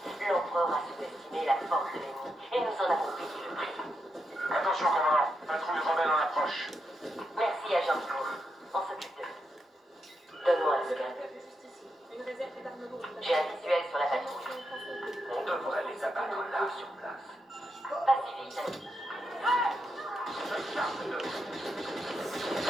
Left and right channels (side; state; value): both; normal; correlation 0.84